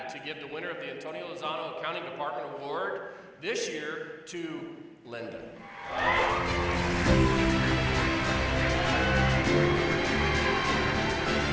to give the winner of the Antonio Lozano Accounting Department Award this year to Lynd.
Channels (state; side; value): identical; both; correlation 1.00